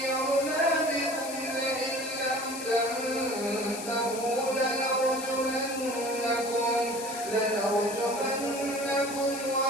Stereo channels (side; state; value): left; noise; hiss, 10 dB below the sound